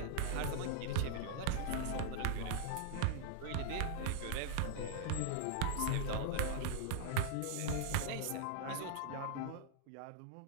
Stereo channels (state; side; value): different; both; correlation -0.01